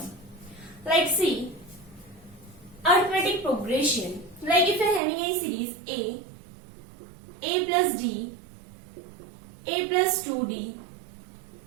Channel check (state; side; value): drops out; left; at 5.0 s